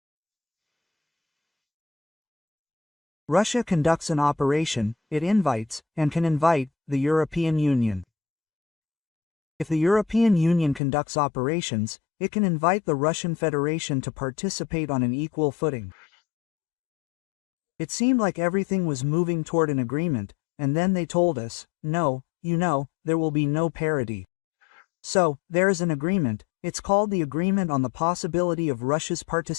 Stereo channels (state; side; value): drops out; right; at 10.8 s